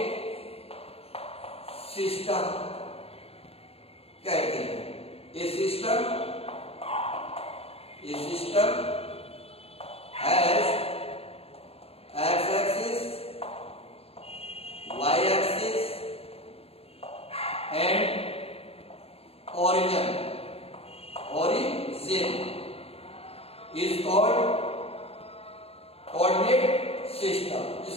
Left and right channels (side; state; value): right; late; 0.29 ms